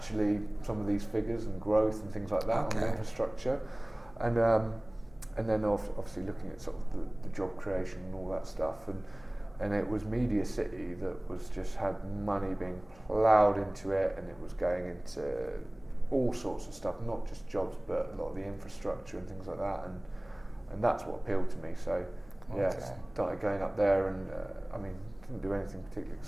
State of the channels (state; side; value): noise; left; hum, 24 dB below the sound